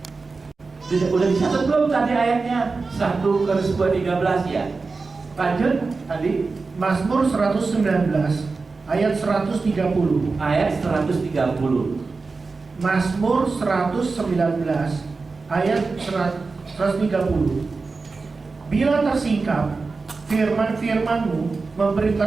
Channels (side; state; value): left; quieter; 4.1 dB